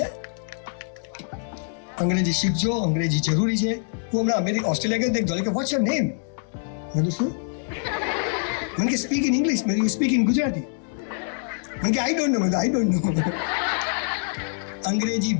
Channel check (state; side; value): silent; right; digital silence